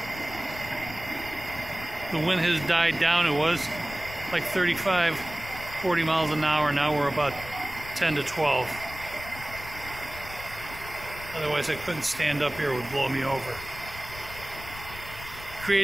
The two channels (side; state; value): left; noise; rumble, 14 dB below the sound